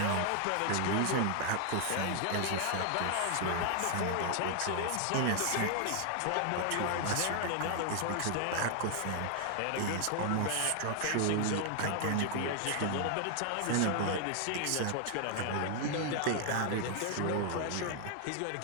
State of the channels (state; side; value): different; both; correlation 0.00